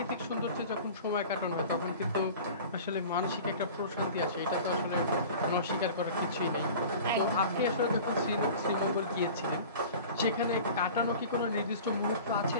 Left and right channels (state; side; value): inverted; both; correlation -0.40